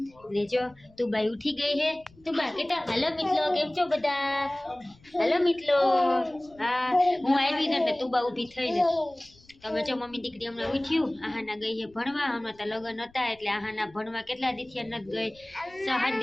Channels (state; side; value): noise; left; rumble, 28 dB below the sound